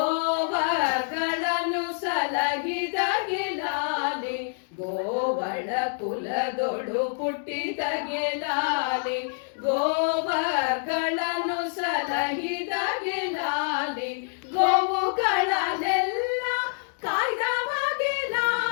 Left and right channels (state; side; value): silent; right; digital silence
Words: ಸಲಹಿದ ಗೆಲಾಲಿ ಗೋವಳ ಕುಲದೊಳು ಪುಟ್ಟಿದ ಗೆಲಾಲಿ ಗೋವಗಳನ್ನು ಸಲಹಿದ ಗೆಲಾಲಿ ಗೋವುಗಳನ್ನೆಲ್ಲ ಕಾಯ್ದವ